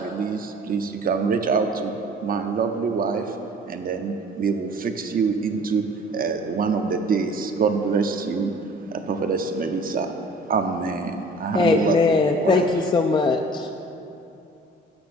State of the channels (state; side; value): normal; both; correlation 0.48